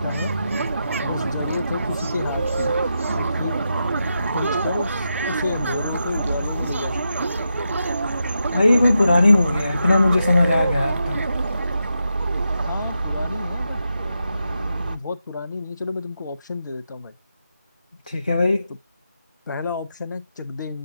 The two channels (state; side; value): inverted; both; correlation -0.86